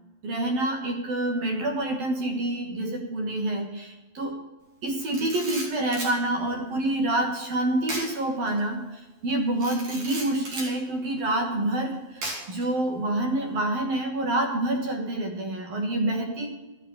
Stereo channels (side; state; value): left; late; 12 ms